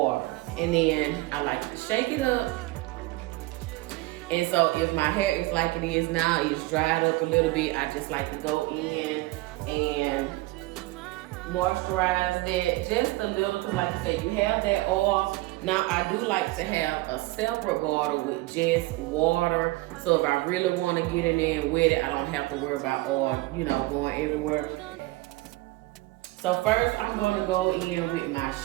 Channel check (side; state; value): left; quieter; 20.2 dB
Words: and then I like to shake it up. And so if my hair is like it is now, it's dried up a little bit, I just like to go in and moisturize that just a little, because like I said, you have that oil. Now I do like to have a separate bottle with just water, so if I really want to get in there and wet it, I don't have to worry about oil, going everywhere. So first I'm going to go in with my